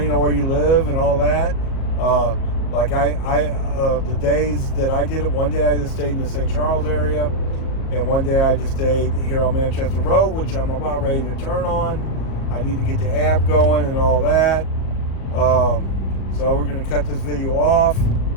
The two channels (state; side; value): late; right; 37 ms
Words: on where you live and all that. Like the days that I did it, one day I just stayed in the St. Charles area, and one day I just stayed here on Manchester Road, which I'm about ready to turn on. I need to get the app going and all that. So we're going to cut this video off.